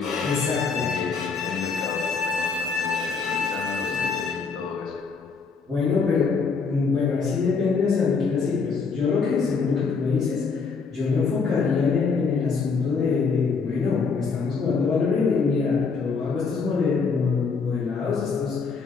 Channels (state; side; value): quieter; right; 5.0 dB